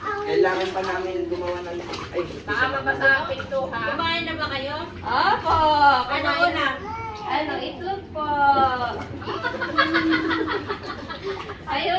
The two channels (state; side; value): identical; both; correlation 1.00